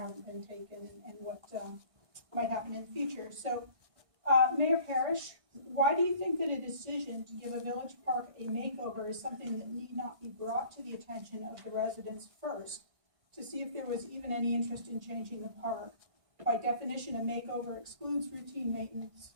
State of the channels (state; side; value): late; left; 1.6 ms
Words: been taken and what might happen in the future. So, Mayor Parrish, why do you think that a decision to give a village park a makeover is something that need not be brought to the attention of the residents first, to see if there was even any interest in changing the park? By definition, a makeover excludes routine